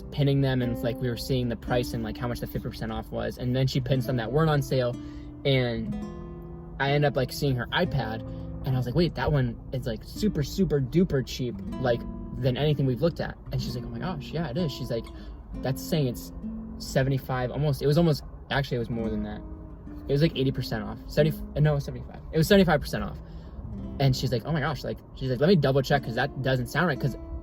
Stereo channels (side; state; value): both; identical; correlation 1.00